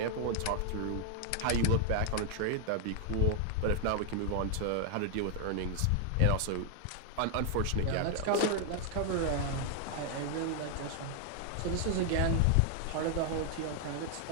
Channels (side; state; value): both; different; correlation 0.00